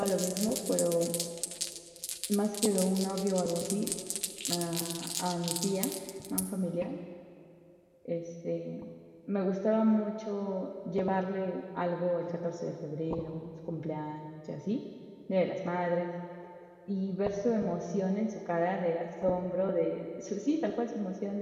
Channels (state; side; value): identical; both; correlation 1.00